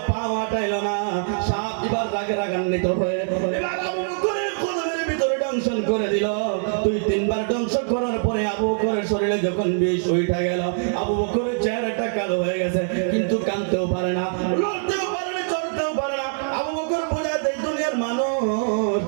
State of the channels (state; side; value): silent; left; digital silence